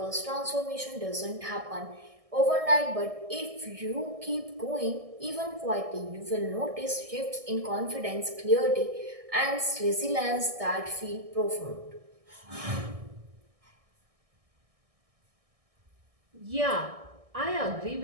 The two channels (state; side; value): late; left; 1.6 ms